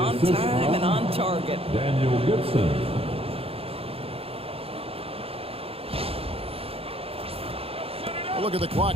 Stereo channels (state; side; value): late; left; 0.28 ms